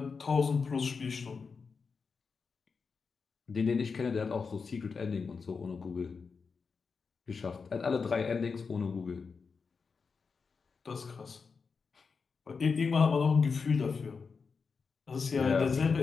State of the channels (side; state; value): right; quieter; 5.2 dB